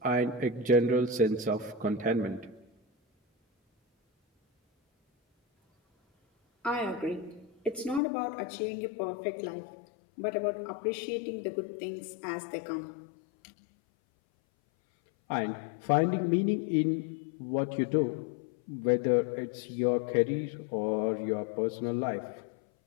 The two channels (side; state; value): right; drops out; at 8.0 s